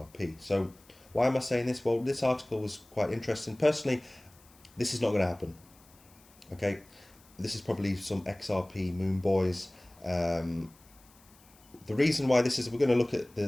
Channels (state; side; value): noise; left; hiss, 27 dB below the sound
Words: So why am I saying this? Well, this article was quite interesting. Personally, this is not going to happen. Okay. This is probably some XRP moon boys. The reason why this is, we're going to look at